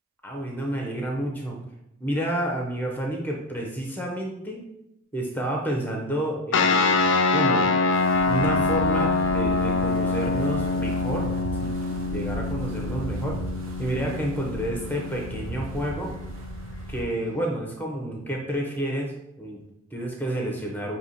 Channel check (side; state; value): both; normal; correlation 0.19